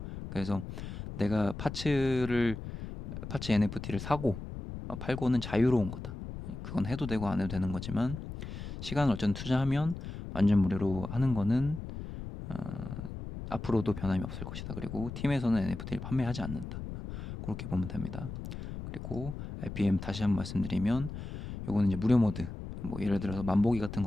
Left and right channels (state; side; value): noise; left; rumble, 8 dB below the sound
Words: 그래서 내가 파츠 NFT를 사고 팔고는 자유로운 거다. 그건 해도 되고 안 해도 되는 거지만 시간을 어쨌든 투자하면 완전 무료로 하는 거는 앞으로도 변함이 없을 것이다. 그리고 팀에서는 NFT를 판매하지 않는다. 그렇게 보면 됩니다. 그리고 RPM 다시 한번 말씀드리면 요거는 이제 무료 모드, 뭐 예를 들어서 만보기 같은